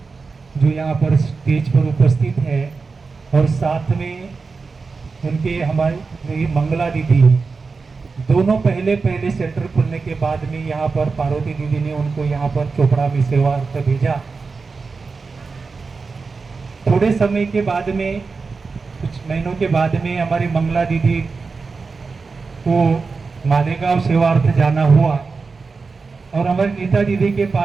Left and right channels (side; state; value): left; quieter; 4.5 dB